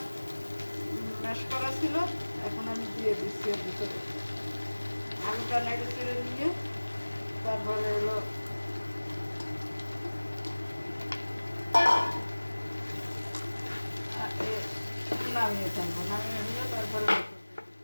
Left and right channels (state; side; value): inverted; both; correlation -1.00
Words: ম্যাশ করা ছিল, এখন আমি দিয়ে দিচ্ছি এর ভিতরে। আলুটা নেড়ে চেড়ে নিয়ে তারপরে হলো নামিয়ে ফেলবো। নামিয়ে নিয়ে তারপরে